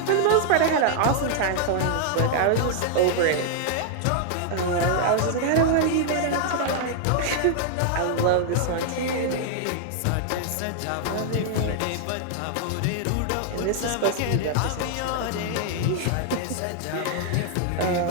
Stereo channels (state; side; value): different; both; correlation 0.00